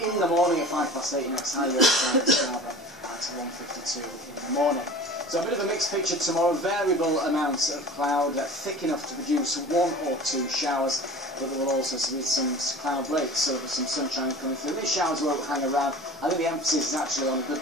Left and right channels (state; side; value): normal; both; correlation 0.39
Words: in the morning at 8:05 next high Yorkshire and Scarborough at 1:52 in the morning. So a bit of a mixed picture tomorrow, variable amounts of cloud, thick enough to produce 1 or 2 showers. But there will also be some cloud breaks, so there's some sunshine coming through. These showers won't hang around. I think the emphasis is actually on a